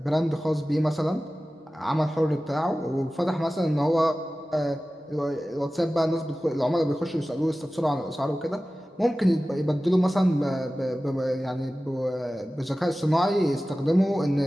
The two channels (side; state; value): both; normal; correlation 0.96